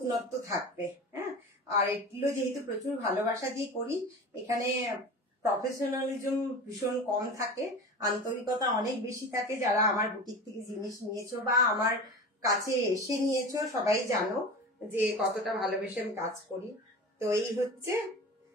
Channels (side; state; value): both; normal; correlation 0.33